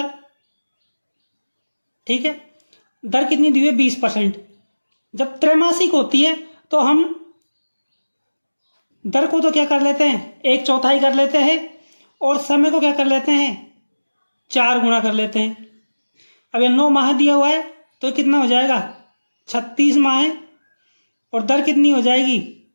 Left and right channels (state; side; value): inverted; both; correlation -1.00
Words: ठीक है। दर कितनी दी हुई है 20%। जब त्रैमासिक होती है तो हम दर को तो क्या कर लेते हैं 1/4 कर लेते हैं, और समय को क्या कर लेते हैं 4 गुना कर लेते हैं। अब ये 9 माह दिया हुआ है तो कितना हो जाएगा 36 माह है, और दर कितनी हो जाएगी